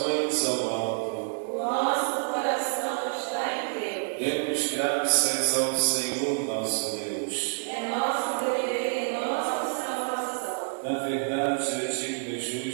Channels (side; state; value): left; silent; digital silence